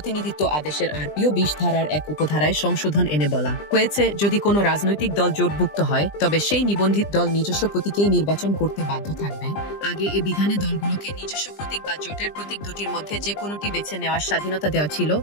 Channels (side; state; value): right; late; 20 ms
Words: আদেশের আরপিও 20 ধারার এক উপধারায় সংশোধন এনে বলা হয়েছে, যদি কোনো রাজনৈতিক দল জোটভুক্ত হয় তবে সেই নিবন্ধিত দল নিজস্ব প্রতীকেই নির্বাচন করতে বাধ্য থাকবে। আগে এ বিধানে দলগুলোকে নিজস্ব প্রতীক বা জোটের প্রতীক দুটির মধ্যে যে কোনোটি বেছে নেওয়ার স্বাধীনতা দেওয়া ছিল,